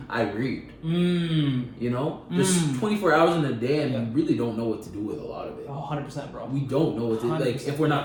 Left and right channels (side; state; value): both; identical; correlation 1.00